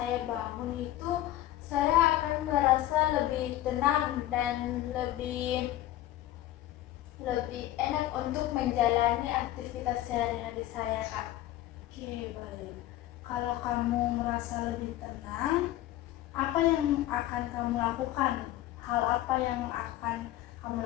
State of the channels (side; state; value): right; quieter; 14.5 dB